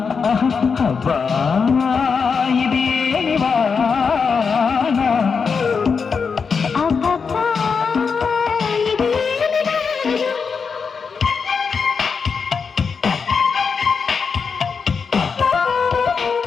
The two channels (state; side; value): quieter; right; 5.6 dB